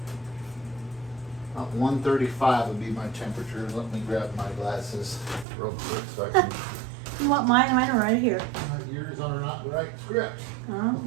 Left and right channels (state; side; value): drops out; left; at 5.5 s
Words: 135 would be my temperature. Let me grab my glasses real quick so I can. You want mine? Mine are right here. Yours are not the right script. Oh,